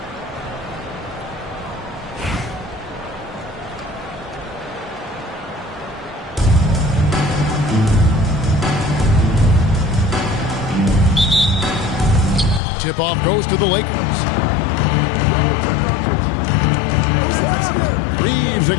Tip-off goes to the Lakers. Reeves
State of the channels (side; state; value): right; drops out; at 12.6 s